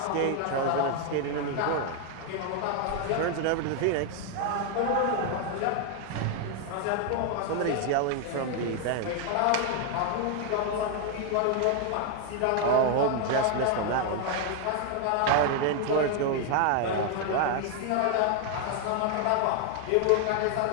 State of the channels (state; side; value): different; both; correlation 0.01